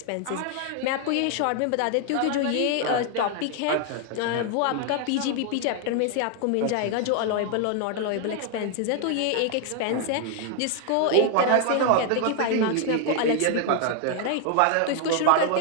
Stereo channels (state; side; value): different; both; correlation 0.00